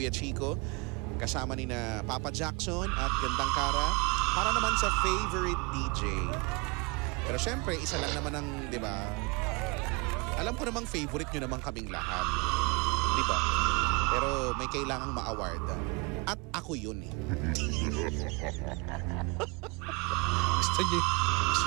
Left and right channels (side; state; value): left; quieter; 29.0 dB